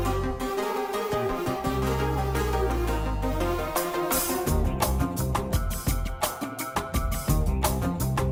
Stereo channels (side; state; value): both; identical; correlation 1.00